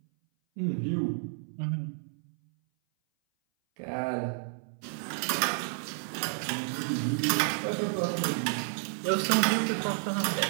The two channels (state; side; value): silent; left; 57 dB below the other